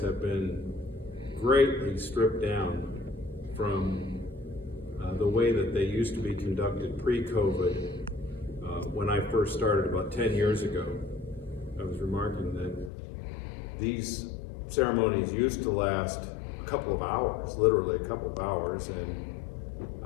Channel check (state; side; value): drops out; right; at 12.9 s